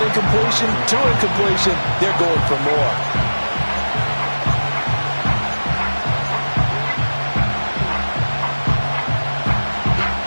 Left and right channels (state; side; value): inverted; both; correlation -1.00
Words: incompletion, 2 incompletion. They're going for more.